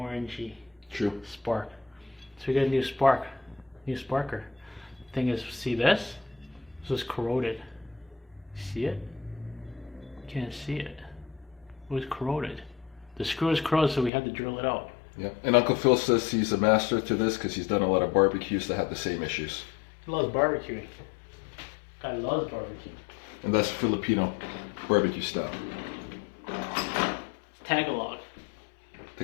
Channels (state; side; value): drops out; right; at 14.1 s